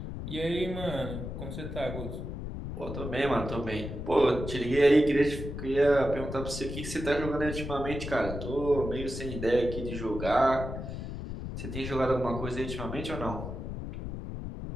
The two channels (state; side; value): noise; left; rumble, 7 dB below the sound